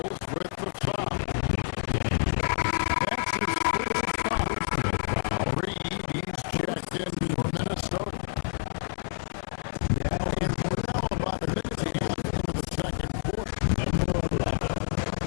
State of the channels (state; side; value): silent; right; digital silence